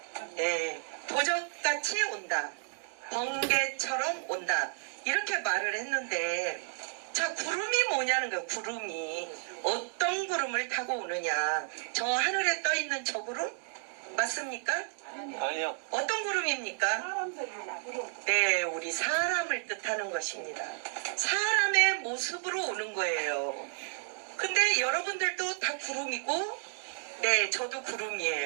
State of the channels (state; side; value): silent; left; digital silence